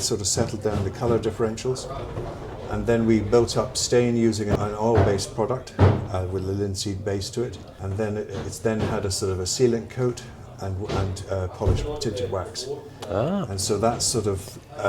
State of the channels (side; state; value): both; identical; correlation 1.00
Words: of settled down the colour differentials. And then we built up stain using an oil-based product with a linseed base to it. And then it's then had a sort of a sealant coat and polished tinted wax. And so that sort of